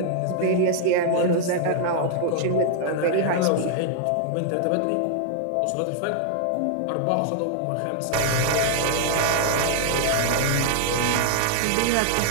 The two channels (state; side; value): different; both; correlation 0.00